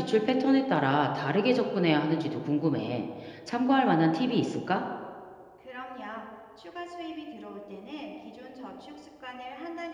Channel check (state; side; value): identical; both; correlation 1.00